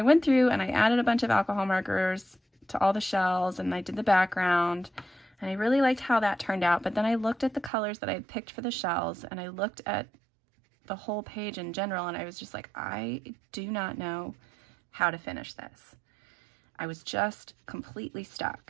went through and I added a bunch of alcohol markers to all the shells, and I did the background, and I really liked how that turned out. But then I looked at the colors that I had picked for the shells, and I looked at the whole page in general, and I was just like, I do not know how to finish this. I was just completely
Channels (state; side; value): drops out; left; at 7.7 s